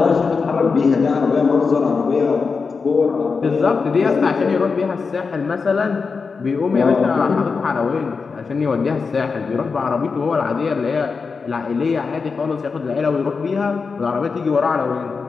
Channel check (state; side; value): quieter; right; 4.9 dB